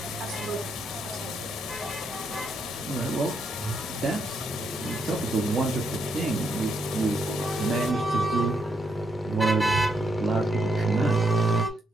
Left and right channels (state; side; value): normal; both; correlation 0.77